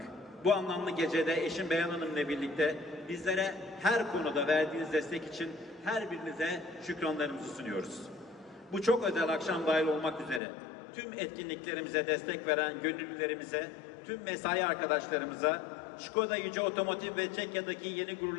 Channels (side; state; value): right; drops out; at 10.4 s